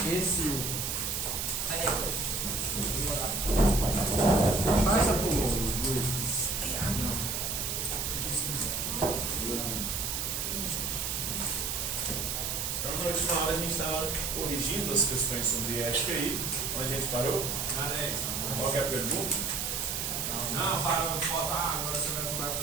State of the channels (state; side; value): noise; right; hiss, 1 dB below the sound